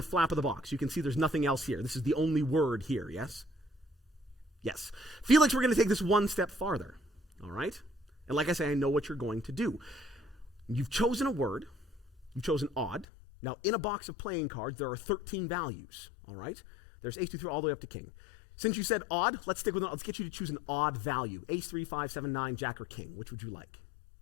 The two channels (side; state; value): right; drops out; at 13.1 s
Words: flap of the box. You can see there's nothing else here. This is the only word here, yes? Yes. Felix, we're going to take this one step farther, all right? And like I say, I know what you're going to do. You've chosen a word. You've chosen odd. Now, in a box of playing cards, there are 13 values, all right? There's ace, 2, 3, all the way up to king. Since you said odd, let's stick with it. Let's get you to choose an odd value. Ace, 3, 5, 7, 9, jack, or king. Which would you like?